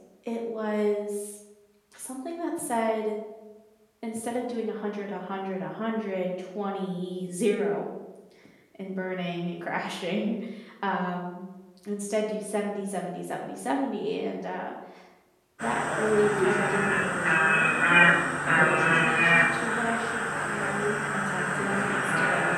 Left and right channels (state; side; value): identical; both; correlation 1.00